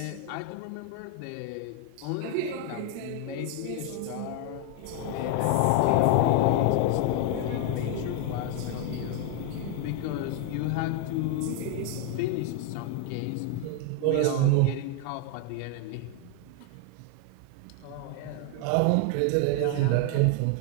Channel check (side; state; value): both; different; correlation 0.01